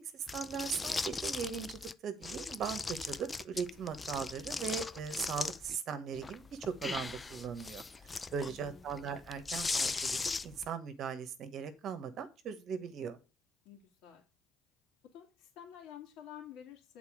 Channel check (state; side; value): normal; both; correlation 0.69